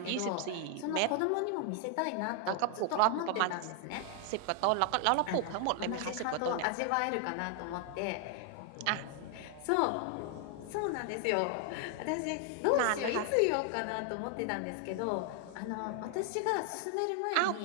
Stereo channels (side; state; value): both; different; correlation 0.00